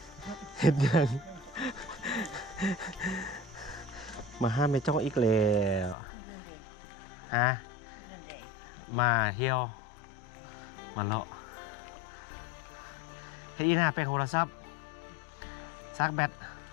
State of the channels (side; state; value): right; drops out; at 6.0 s